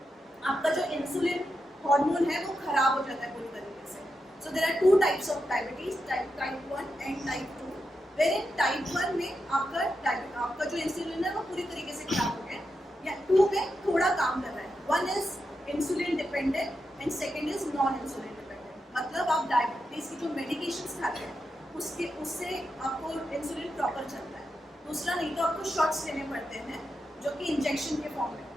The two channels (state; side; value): normal; both; correlation 0.87